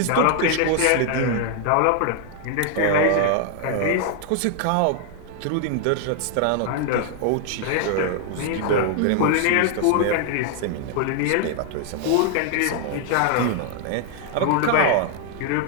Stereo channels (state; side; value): different; both; correlation 0.00